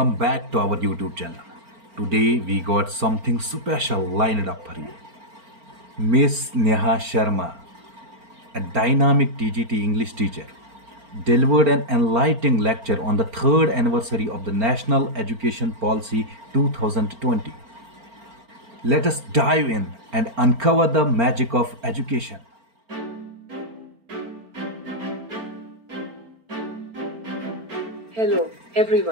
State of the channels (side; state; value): left; late; 4.4 ms